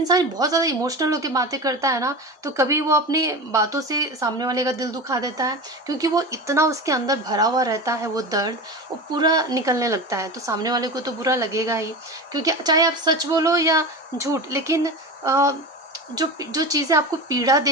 बहुत ज़्यादा इमोशनल होके बातें करता है ना, तो कभी वो अपनी बातों से सामने वाले का दिल दुखा देता है, क्योंकि वो इतना उसके अंदर भरा हुआ रहता है वो दर्द, वो पूरा निकलने लगता है, तो सामने वाले को तो बुरा लगेगा ही, क्योंकि चाहे आप सच बोलो या झूठ, लेकिन जो चीज़ें आपको पीड़ा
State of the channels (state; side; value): normal; both; correlation 0.27